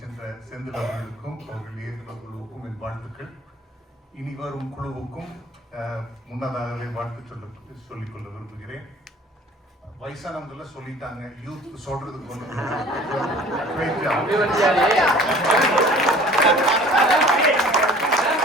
சென்ற செந்தில் அவர்களுக்கும் அவர்கள் இயக்குநர் குழுவுக்கும் என் வாழ்த்துக்கள். இனி வரும் குழுவுக்கும் முன்னதாகவே வாழ்த்து சொல்லிக்கொள்ள விரும்புகிறேன். வயசானவங்கள சொல்லிட்டாங்க, யூத் சொல்றதுக்கு ஒன்று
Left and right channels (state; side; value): normal; both; correlation 0.48